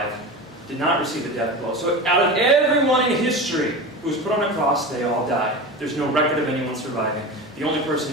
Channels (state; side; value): normal; both; correlation 0.28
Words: did not receive a death blow. So out of everyone in history who was put on a cross, they all died. There's no record of anyone surviving. The only person